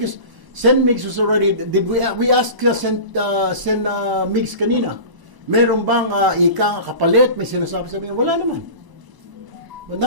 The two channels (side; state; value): left; late; 1.0 ms